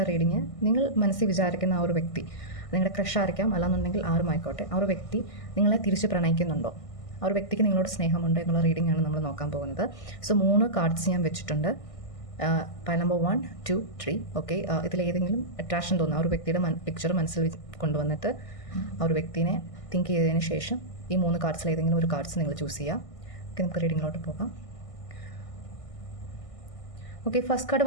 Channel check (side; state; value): right; late; 1.6 ms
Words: reading, നിങ്ങൾ മനസ്സിൽ വിചാരിക്കുന്ന ആ ഒരു വ്യക്തി, നിങ്ങളുടെ ക്രഷായിരിക്കാം, അല്ലാന്നുണ്ടെങ്കിൽ ആരുമായിക്കോട്ടെ, ആ ഒരു വ്യക്തി നിങ്ങളെ തിരിച്ച് പ്രണയിക്കുന്നുണ്ടോ, ആ ഒരു വ്യക്തിക്ക് നിങ്ങളോട് സ്നേഹമുണ്ടോ എന്നുള്ള റീഡിംഗ് ആണ് നമ്മൾ നോക്കാൻ പോകുന്നത്. സോ 3 കാർഡ്സ് ഞാൻ വെച്ചിട്ടുണ്ട്. Pile number 1, 2, 3. ഓക്കെ, ഇതിലേതെങ്കിലും അട്രാക്ഷൻ തോന്നുന്ന ആ ഒരു വ്യക്തിയുടെ പിക്ചർ മനസ്സിൽ കൊണ്ടുവന്നിട്ട് ആ ഒരു വ്യക്തിനെ തിങ്ക് ചെയ്തതിന് ശേഷം ഈ 3 കാർഡ്സിൽ ഏതെങ്കിലും ഒരു കാർഡ്സ് നിങ്ങൾ ചൂസ് ചെയ്യുക. ഓക്കെ, നമുക്ക് റീഡിങ്ങിലോട്ട് പോകാം. ഓക്കെ, ഫസ്റ്റ് കാർഡ്